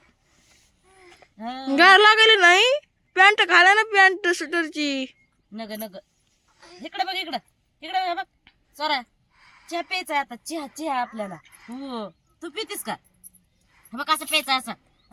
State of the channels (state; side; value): identical; both; correlation 1.00